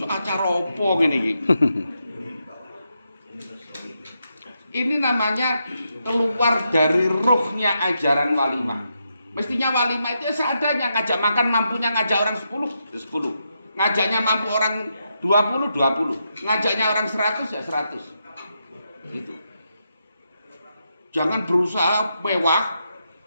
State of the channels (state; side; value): inverted; both; correlation -0.83